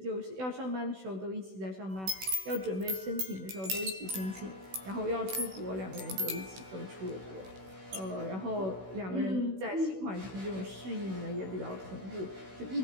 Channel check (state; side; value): late; left; 16 ms